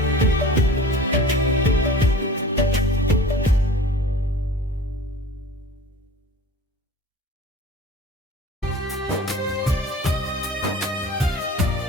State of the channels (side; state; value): both; normal; correlation 0.40